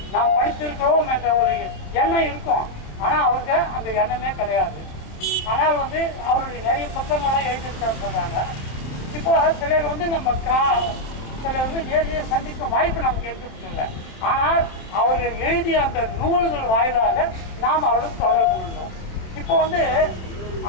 நாம் படித்திருக்கிறோம் என்ற ஒரு எண்ணம் இருக்கும். ஆனால் அவருக்கு அந்த எண்ணமே கிடையாது. ஆனால் அவருடைய நிறைய புத்தகங்கள்லாம் எழுதியிருக்காரு சொல்கிறாங்க. இப்போ சிலர் நம்ம சிலர் நேரடியாக சந்திக்கும் வாய்ப்பு நமக்கு எடுத்துக்கிட்டு. ஆனால் அவர்கள் எழுதிய அந்த நூல்கள் வாயிலாக நாம் அவர்களுக்கு தொடர்பு கொண்டோம். இப்போ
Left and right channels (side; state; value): right; late; 27 ms